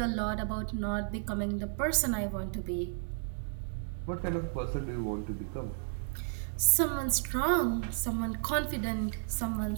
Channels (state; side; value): silent; left; digital silence